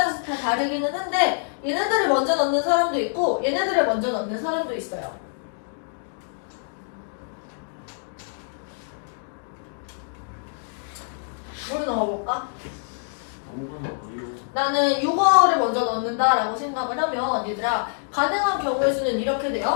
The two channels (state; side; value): silent; right; digital silence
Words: 다 다르기는 한데 얘네들을 먼저 넣는 사람도 있고 얘네들을 먼저 넣는 사람도 있어요. 뭘 넣어볼까? 나는 6어를 먼저 넣는다라고 생각을 하면 얘들아 가능한 경우의 수는 이렇게